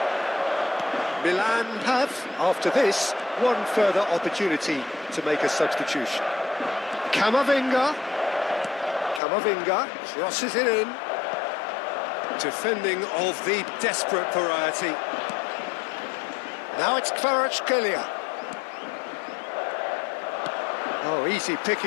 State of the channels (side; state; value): right; drops out; at 9.2 s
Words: Milan have, after this, one further opportunity to make a substitution. Camavinga crosses it in. Defending of the desperate variety. Now it's Kvaratskhelia. Oh, easy